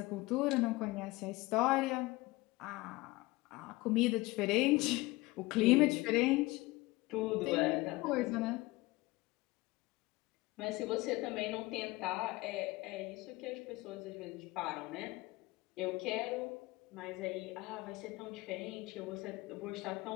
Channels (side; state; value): right; quieter; 21.2 dB